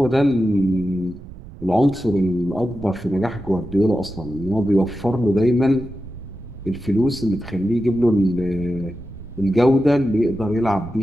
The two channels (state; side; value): noise; right; rumble, 16 dB below the sound